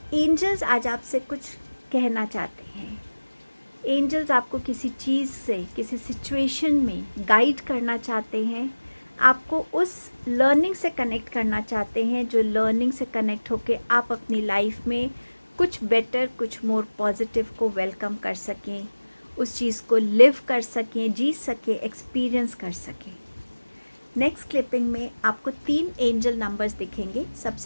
एंजल्स आज आपसे कुछ कहना चाहते हैं। एंजल्स आपको किसी चीज़ से, किसी सिचुएशन में गाइड करना चाहते हैं। आपको उस लर्निंग से कनेक्ट करना चाहते हैं, जो लर्निंग से कनेक्ट होके आप अपनी लाइफ में कुछ बेटर, कुछ मोर पॉजिटिव को वेलकम कर सकें, उस चीज़ को लिव कर सकें, जी सकें, एक्सपीरियंस कर सकें। नेक्स्ट क्लिपिंग में आपको 3 एंजल नंबर्स दिखेंगे।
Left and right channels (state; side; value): inverted; both; correlation -1.00